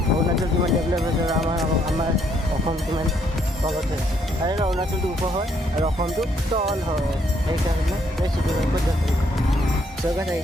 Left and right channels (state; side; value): normal; both; correlation 0.70